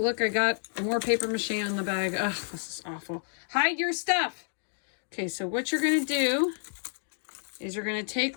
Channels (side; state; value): right; silent; digital silence